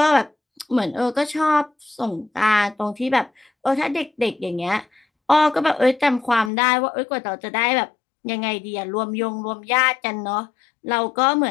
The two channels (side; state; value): right; drops out; at 6.5 s